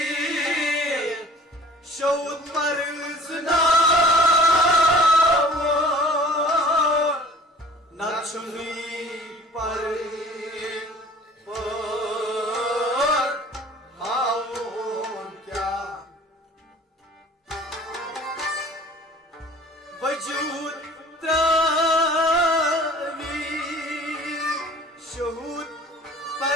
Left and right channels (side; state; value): both; normal; correlation 0.48